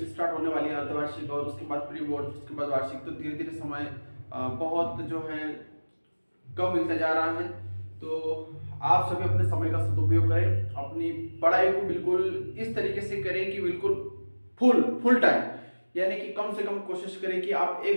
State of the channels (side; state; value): both; inverted; correlation -1.00